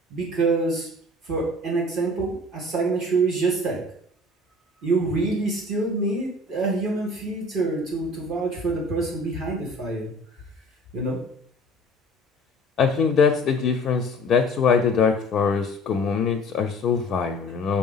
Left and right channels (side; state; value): both; normal; correlation 0.47